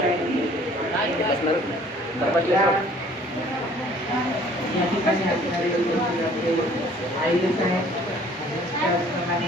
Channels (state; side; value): normal; both; correlation 0.55